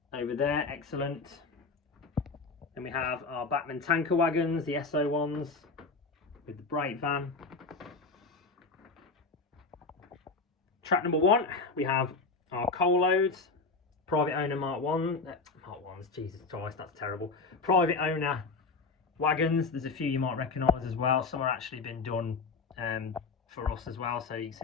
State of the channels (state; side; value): quieter; right; 4.0 dB